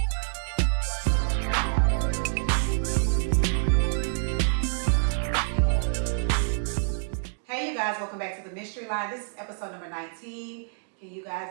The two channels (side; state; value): left; silent; digital silence